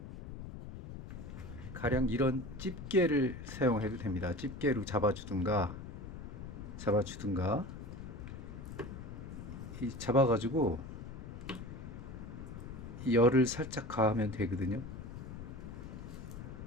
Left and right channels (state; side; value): noise; left; rumble, 10 dB below the sound